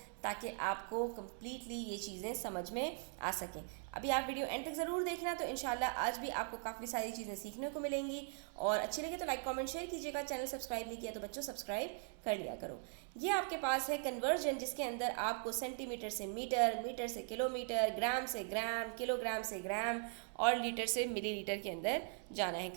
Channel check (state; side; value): silent; left; 51 dB below the other